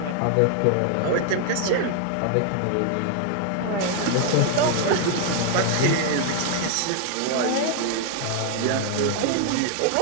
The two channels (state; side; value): different; both; correlation 0.00